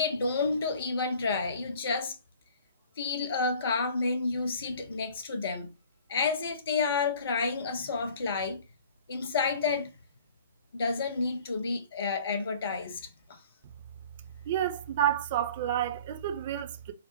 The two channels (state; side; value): inverted; both; correlation -0.48